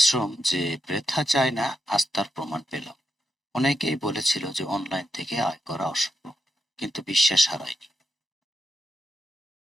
যে বৃথা যায় না, আজ তার প্রমাণ পেলাম। অনেকেই বলেছিল যে অনলাইন থেকে আয় করা অসম্ভব, কিন্তু বিশ্বাস হারায়নি।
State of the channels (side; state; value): both; normal; correlation 0.84